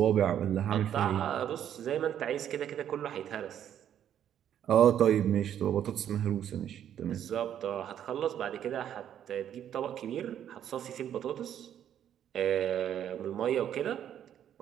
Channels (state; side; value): quieter; left; 10.1 dB